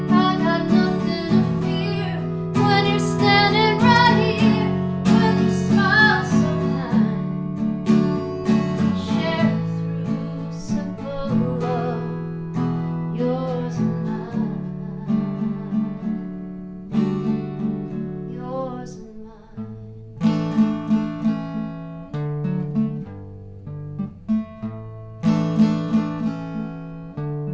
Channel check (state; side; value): identical; both; correlation 1.00